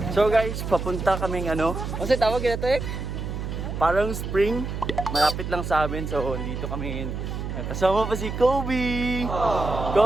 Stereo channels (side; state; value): right; noise; hum, 5 dB below the sound